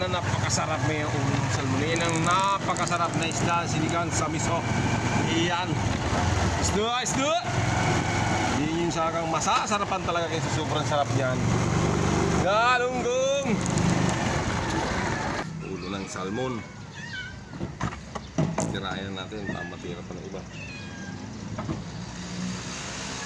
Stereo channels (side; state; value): both; identical; correlation 1.00